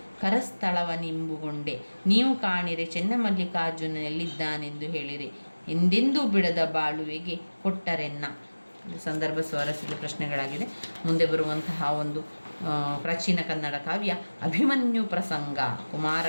ಕರಸ್ಥಳವನಿಂಬುಗೊಂಡೆ. ನೀವು ಕಾಣಿರೆ ಚೆನ್ನಮಲ್ಲಿಕಾರ್ಜುನನೆಲ್ಲಿದ್ದಾನೆಂದು ಹೇಳಿರಿ, ಎಂದೆಂದೂ ಬಿಡದ ಬಾಳುವೆಗೆ ಕೊಟ್ಟರೆನ್ನ. ಸಂದರ್ಭ ಸ್ವಾರಸ್ಯದ ಪ್ರಶ್ನೆಗಳಾಗಿದೆ. ಮುಂದೆ ಬರುವಂತಹ ಒಂದು ಪ್ರಾಚೀನ ಕನ್ನಡ ಕಾವ್ಯ ಅಭಿಮನ್ಯು ಪ್ರಸಂಗ,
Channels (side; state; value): both; inverted; correlation -1.00